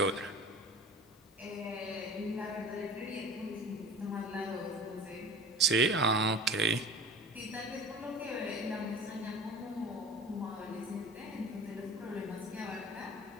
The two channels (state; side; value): normal; both; correlation 0.38